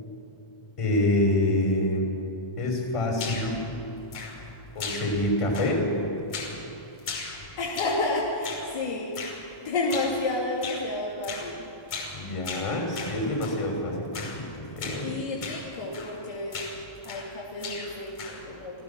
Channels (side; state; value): right; late; 1.6 ms